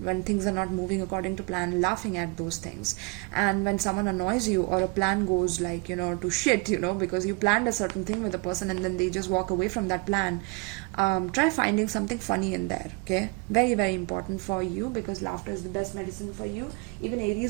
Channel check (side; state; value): left; quieter; 28.8 dB